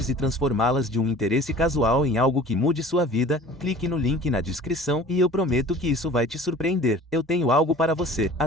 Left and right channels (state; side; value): normal; both; correlation 0.44